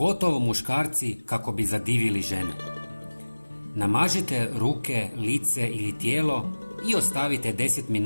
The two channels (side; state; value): both; inverted; correlation -1.00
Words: muškarci kako bi zadivili žene. Namažite ruke, lice ili tijelo i ostavite 10